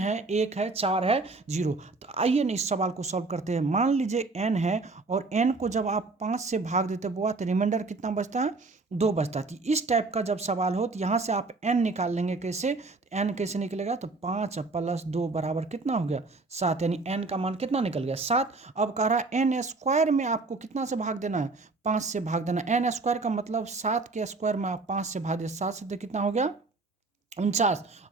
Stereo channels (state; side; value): quieter; left; 3.6 dB